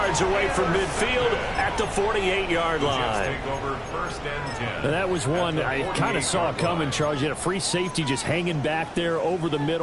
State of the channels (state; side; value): identical; both; correlation 1.00